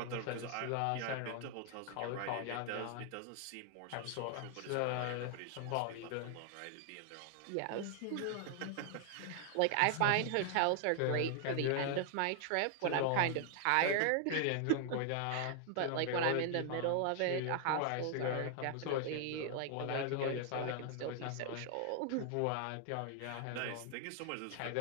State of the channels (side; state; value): both; different; correlation 0.00